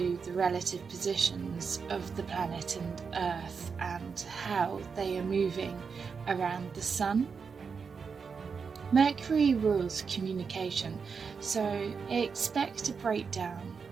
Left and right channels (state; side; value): quieter; left; 5.7 dB